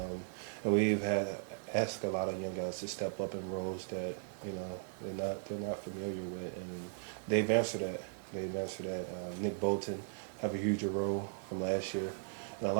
we've had asked a lot of young guys to step up in roles that they're not familiar with, and they've answered that. Nick Bolton have a huge role from last year, and a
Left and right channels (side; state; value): left; silent; 53 dB below the other